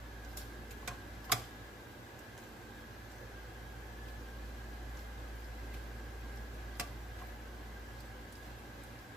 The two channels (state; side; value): normal; both; correlation 0.71